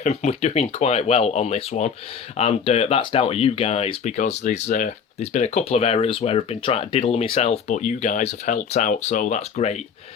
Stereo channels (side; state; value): right; quieter; 6.7 dB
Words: we're doing quite well on this one, and that's down to you guys, because there's been a couple of errors where I've been trying to diddle myself, but you guys have helped out, so that's great.